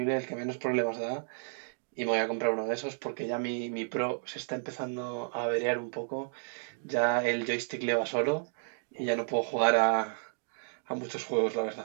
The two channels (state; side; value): silent; left; digital silence